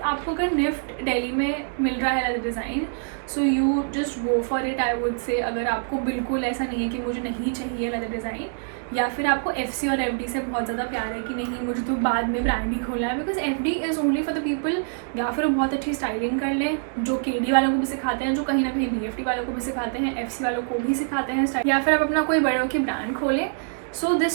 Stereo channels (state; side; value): silent; left; digital silence